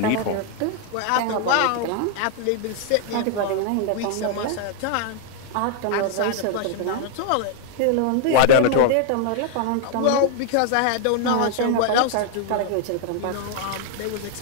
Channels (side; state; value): both; different; correlation 0.00